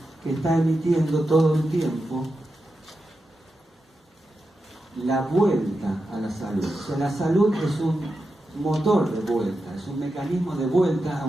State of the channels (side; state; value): both; normal; correlation 0.89